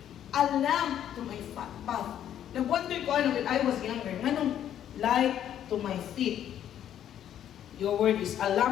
a lamp to my path. Nag-wonder ko when I was younger, nganong light to my feet? Your word is a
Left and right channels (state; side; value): quieter; right; 10.5 dB